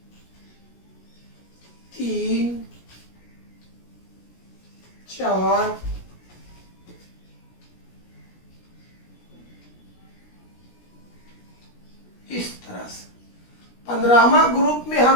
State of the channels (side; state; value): right; late; 17 ms